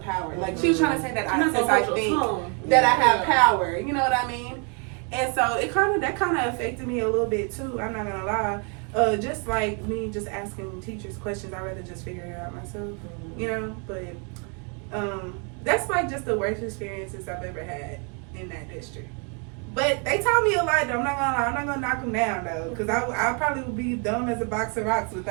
power. Like, she was trying to say that I think that I have power. You know what I mean? And so that kind of affected me a little bit too. I'm not gonna lie. Just like me, just asking teachers questions, I'd rather just figure it out myself. You know, but that's like just the worst experiences I've ever had in that district. But they taught me a lot, though. I'm not gonna lie. I'm not gonna knock them down, though, because I probably would be dumb as a box of rocks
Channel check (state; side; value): quieter; left; 37.2 dB